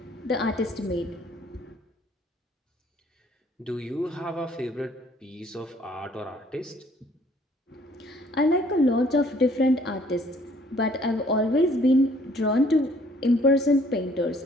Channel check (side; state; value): both; normal; correlation 0.60